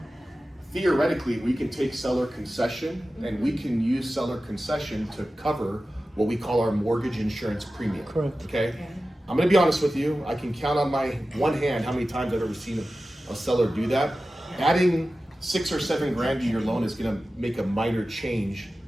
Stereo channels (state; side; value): normal; both; correlation 0.95